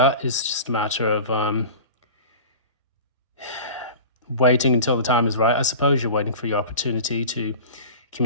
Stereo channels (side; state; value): both; inverted; correlation -0.36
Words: It's just a matter of waiting until the time is right. I suppose you're waiting for your opportunity to